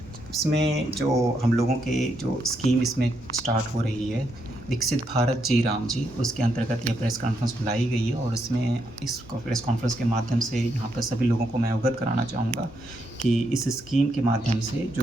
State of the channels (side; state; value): both; normal; correlation 0.79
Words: इसमें जो हम लोगों के जो स्कीम इसमें स्टार्ट हो रही है, विकसित भारत जी राम जी, उसके अंतर्गत यह प्रेस कॉन्फ्रेंस बुलाई गई है और इसमें इस प्रेस कॉन्फ्रेंस के माध्यम से यहाँ पर सभी लोगों को मैं अवगत कराना चाहूँगा कि इस स्कीम के माध्यम से